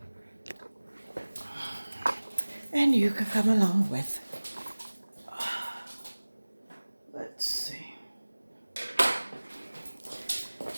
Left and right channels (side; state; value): both; inverted; correlation -1.00